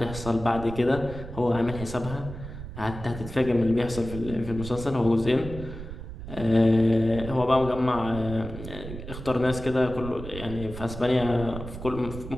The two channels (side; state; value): right; noise; rumble, 10 dB below the sound